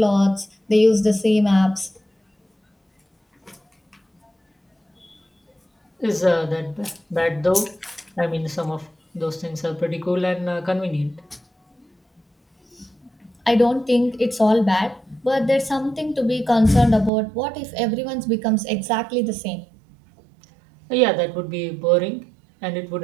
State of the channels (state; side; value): drops out; left; at 17.1 s